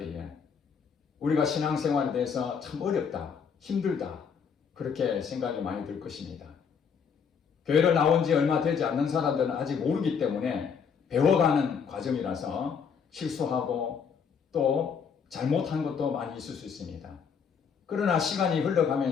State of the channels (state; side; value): quieter; right; 6.6 dB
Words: 우리가 신앙생활에 대해서 참 어렵다, 힘들다 그렇게 생각이 많이 들 것입니다. 교회를 나온 지 얼마 되지 않는 사람들은 아직 모르기 때문에 배워가는 과정이라서 실수하고 또 잘못한 것도 많이 있을 수 있습니다. 그러나 시간이